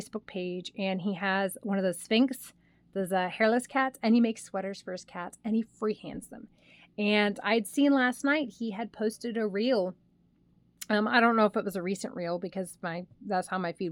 page, and he has one of those Sphinx, those hairless cats, and he makes sweaters for his cats, and he freehands them. And I'd seen last night he had posted a reel. I don't know if it was a recent reel because that's how my feed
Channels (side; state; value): both; identical; correlation 1.00